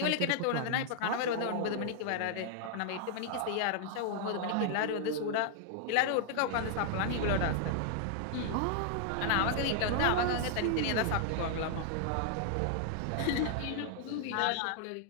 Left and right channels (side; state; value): both; different; correlation 0.00